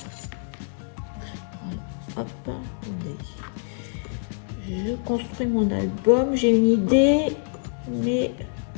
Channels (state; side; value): silent; right; digital silence